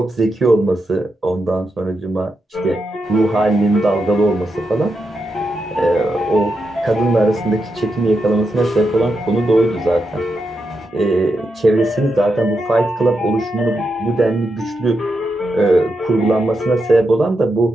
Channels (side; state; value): both; normal; correlation 0.85